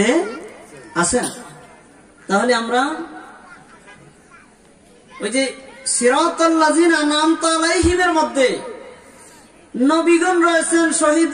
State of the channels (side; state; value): both; identical; correlation 1.00